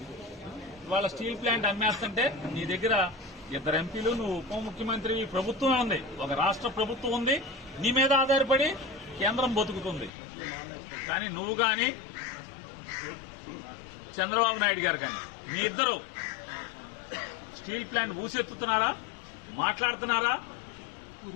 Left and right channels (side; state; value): right; drops out; at 10.1 s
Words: వాళ్ళ స్టీల్ ప్లాంట్ అమ్మేస్తుంటే నీ దగ్గర ఇద్దరు ఎంపీలు, నువ్వు ఉప ముఖ్యమంత్రి, ప్రభుత్వం ఉంది, ఒక రాష్ట్ర ప్రభుత్వం ఉంది, నీ మీద ఆధారపడి కేంద్రం బతుకుతుంది. కానీ నువ్వు కానీ చంద్రబాబు నాయుడు గారు కానీ మీ ఇద్దరు స్టీల్ ప్లాంట్ ఊసెత్తుతున్నారా, మాట్లాడుతున్నారా?